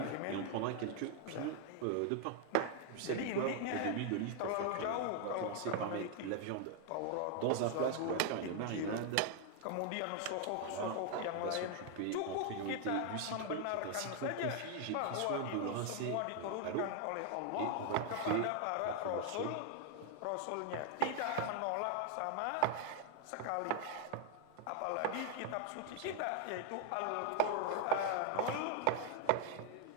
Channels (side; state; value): both; different; correlation 0.01